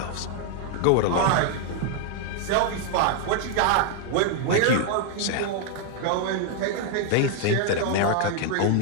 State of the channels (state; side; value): different; both; correlation 0.00